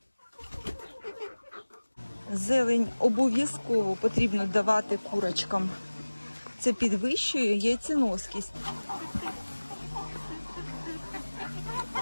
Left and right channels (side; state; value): both; inverted; correlation -1.00